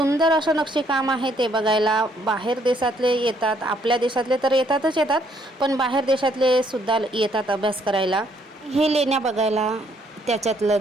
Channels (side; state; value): both; normal; correlation 0.68